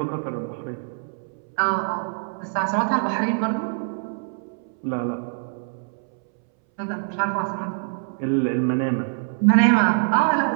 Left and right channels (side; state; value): left; silent; 62 dB below the other